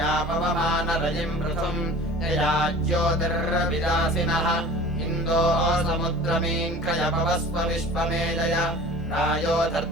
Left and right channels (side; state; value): both; normal; correlation 0.42